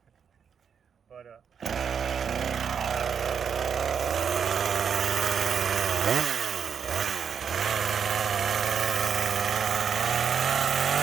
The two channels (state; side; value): quieter; left; 7.2 dB